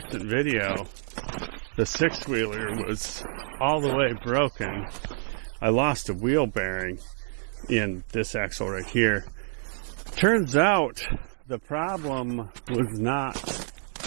video, the 6-wheeler was all the way broken. I lost a wheel bearing in this axle right here. Turns out the problem was not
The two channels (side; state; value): left; silent; digital silence